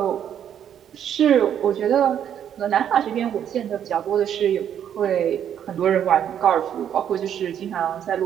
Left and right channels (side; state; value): left; quieter; 9.4 dB